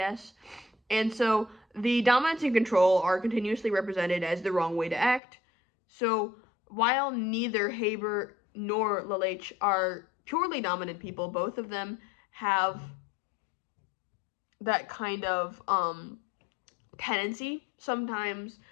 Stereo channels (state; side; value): drops out; right; at 5.2 s